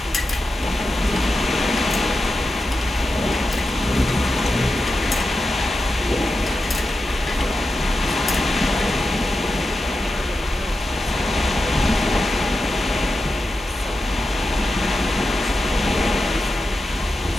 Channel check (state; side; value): normal; both; correlation 0.90